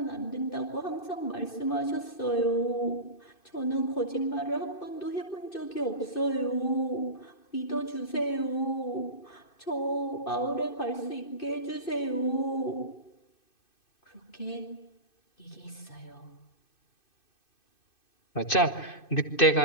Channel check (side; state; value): right; late; 2.6 ms